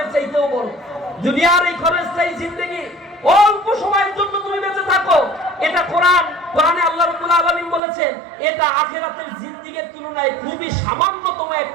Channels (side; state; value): left; drops out; at 7.8 s